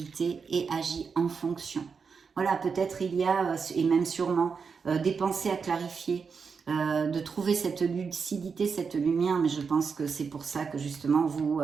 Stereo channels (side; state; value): left; quieter; 5.6 dB